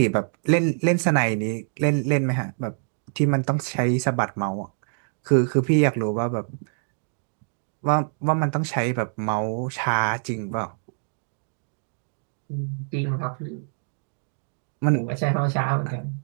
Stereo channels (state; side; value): silent; left; digital silence